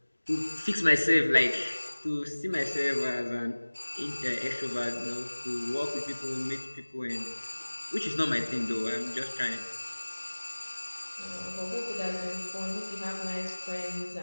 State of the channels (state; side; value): inverted; both; correlation -1.00